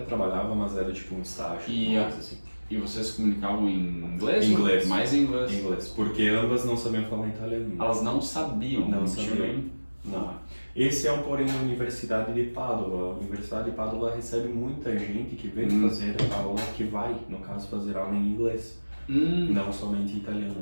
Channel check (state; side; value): inverted; both; correlation -1.00